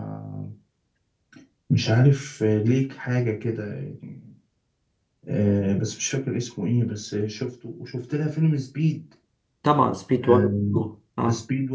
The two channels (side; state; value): both; identical; correlation 1.00